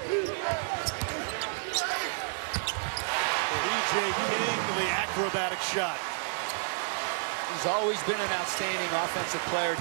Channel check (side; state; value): left; silent; 58 dB below the other